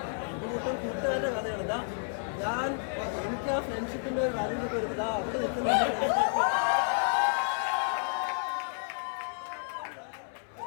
ഇതിനിപ്പം കൂട്ടുകാരുടെ കഥയാണ്. ഇതാ ഞാൻ എനിക്ക് ആ ഫ്രണ്ട്ഷിപ്പിൻ്റെ ഒരു കാര്യങ്ങളൊക്കെ വരുന്നത് അവിടെ നിൽക്കുന്ന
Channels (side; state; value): right; silent; 57 dB below the other